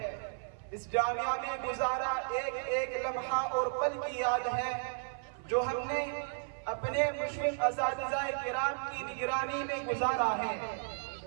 اس جامعہ میں گزارا ایک ایک لمحہ اور پل کی یاد ہے جو ہم نے اپنے مشرف اساتذہ کرام کی نگرانی میں گزارا ہے۔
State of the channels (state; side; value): silent; left; 55 dB below the other